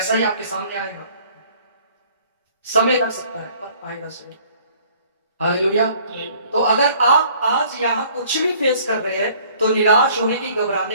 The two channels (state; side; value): inverted; both; correlation -0.56